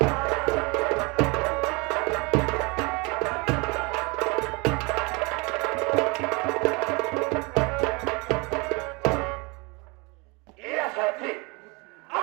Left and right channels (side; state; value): left; quieter; 28.0 dB